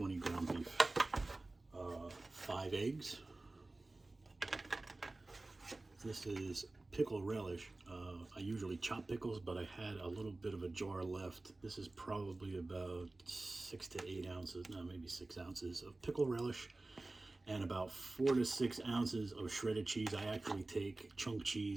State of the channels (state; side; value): quieter; left; 3.0 dB